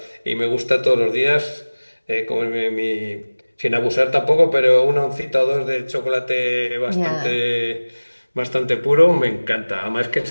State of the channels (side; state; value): both; inverted; correlation -1.00